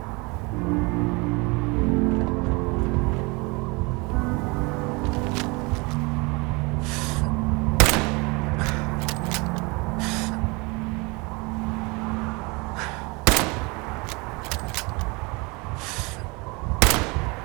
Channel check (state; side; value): quieter; left; 27.6 dB